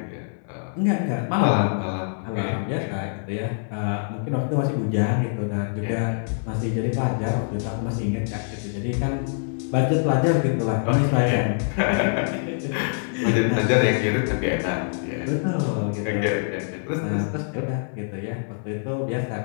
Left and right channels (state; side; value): silent; right; 62 dB below the other